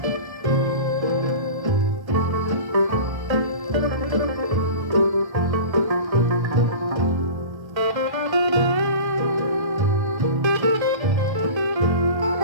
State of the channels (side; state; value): left; late; 1.3 ms